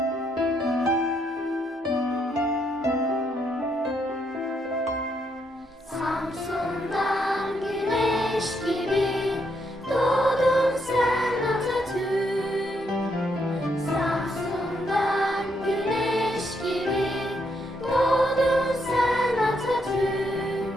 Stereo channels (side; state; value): both; normal; correlation 0.76